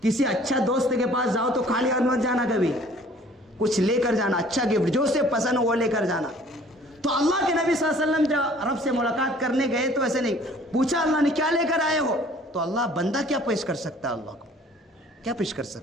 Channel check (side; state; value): both; normal; correlation 0.53